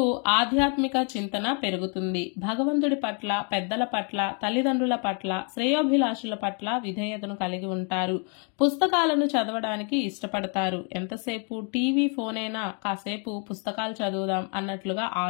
ఆధ్యాత్మిక చింతన పెరుగుతుంది. భగవంతుడి పట్ల, పెద్దల పట్ల, తల్లిదండ్రుల పట్ల, శ్రేయోభిలాషుల పట్ల విధేయతను కలిగి ఉంటారు. పుస్తకాలను చదవడానికి ఇష్టపడతారు. ఎంతసేపు టీవీ, ఫోన్ అయినా కాసేపు పుస్తకాలు చదువుదాం అన్నట్లుగా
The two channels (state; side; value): quieter; right; 39.1 dB